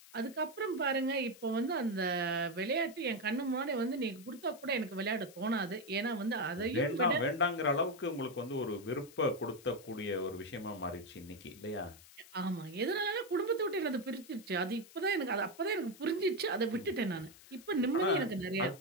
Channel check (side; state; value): left; noise; hiss, 21 dB below the sound